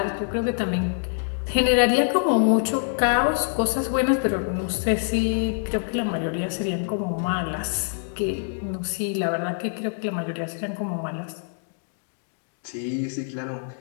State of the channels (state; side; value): silent; right; digital silence